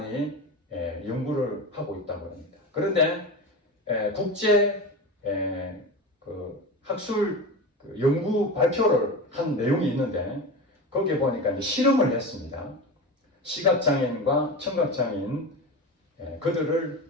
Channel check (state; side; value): normal; both; correlation 0.26